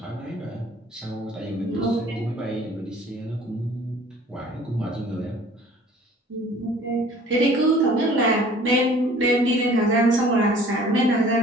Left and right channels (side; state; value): both; normal; correlation 0.50